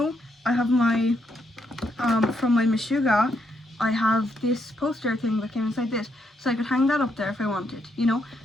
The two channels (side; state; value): both; normal; correlation 0.77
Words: I have my from my Meshuggah, I have this poster thing that came inside this, so I could hang that up there if I wanted, you know.